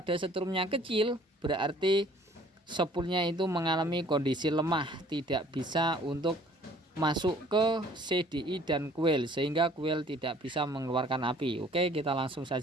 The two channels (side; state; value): both; normal; correlation 0.55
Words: setrumnya kecil, berarti sepulnya itu mengalami kondisi lemah, tidak bisa untuk masuk ke CDI dan kuil, sehingga kuil tidak bisa mengeluarkan api. Oke, kita langsung